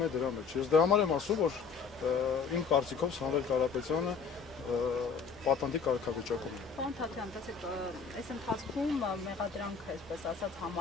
է դրա մեջ։ Ես դրա համար եմ ասում, որ իմ կարծիքով Սամվել Կարապետյանը պատանդի կարգավիճակում է։ Պարոն Թաթյան, տեսեք, այս ընթացքում մեղադրանքը, այսպես ասած,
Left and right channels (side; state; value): right; quieter; 5.7 dB